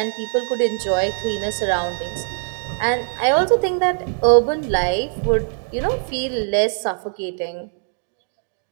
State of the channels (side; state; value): left; silent; digital silence